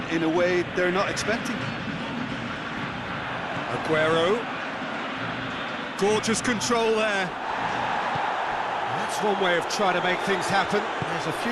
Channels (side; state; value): both; identical; correlation 1.00